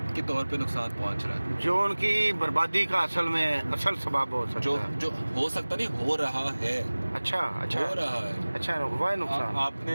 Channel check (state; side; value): inverted; both; correlation -1.00